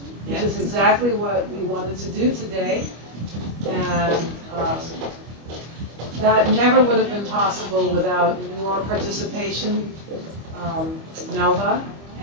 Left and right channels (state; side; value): late; left; 25 ms